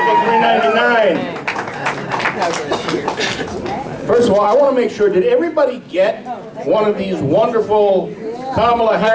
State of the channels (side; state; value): both; identical; correlation 1.00